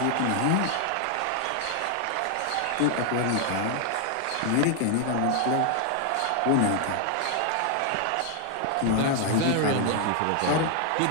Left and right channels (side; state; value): both; different; correlation 0.00